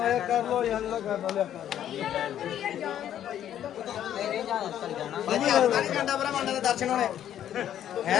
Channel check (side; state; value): right; quieter; 10.8 dB